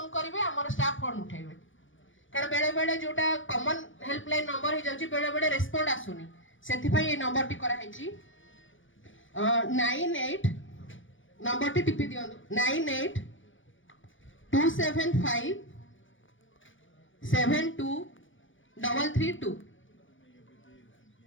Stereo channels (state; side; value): late; right; 0.56 ms